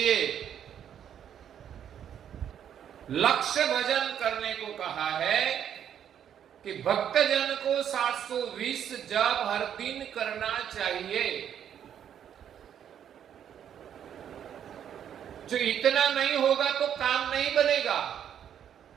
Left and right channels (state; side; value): quieter; left; 9.3 dB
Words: लक्ष्य भजन करने को कहा है कि भक्तजन को 720 जप हर दिन करना चाहिए। जो इतना नहीं होगा तो काम नहीं बनेगा,